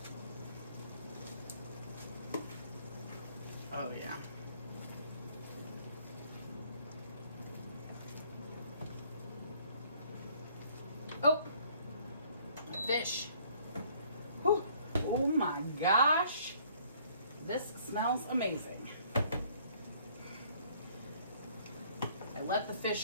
Oh yeah. Oh, fish. Whew. Oh my gosh. This smells amazing. I let the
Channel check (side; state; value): both; inverted; correlation -0.60